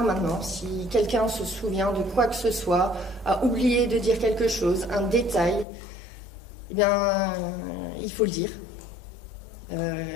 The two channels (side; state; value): right; drops out; at 5.7 s